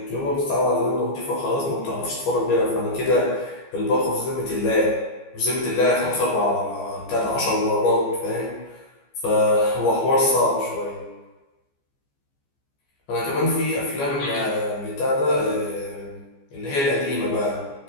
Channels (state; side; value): late; right; 14 ms